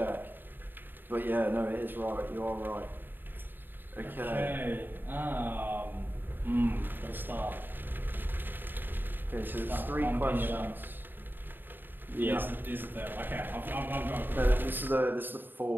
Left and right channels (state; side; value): late; left; 0.093 ms